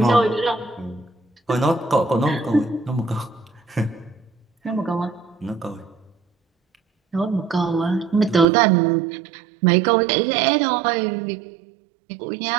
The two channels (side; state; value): left; drops out; at 8.5 s